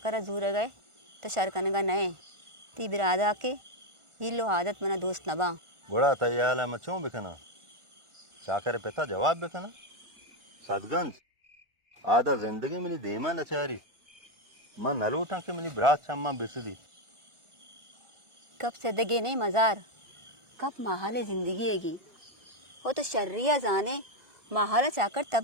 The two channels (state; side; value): late; left; 1.4 ms